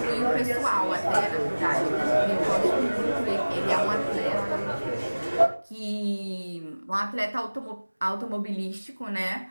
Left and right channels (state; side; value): inverted; both; correlation -1.00